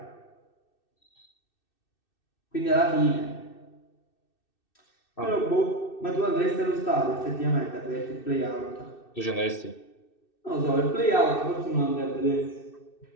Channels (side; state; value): right; late; 2.6 ms